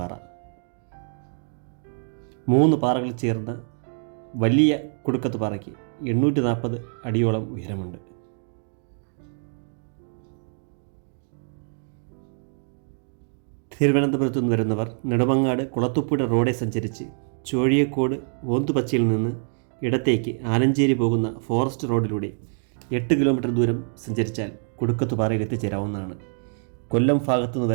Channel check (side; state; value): left; silent; 58 dB below the other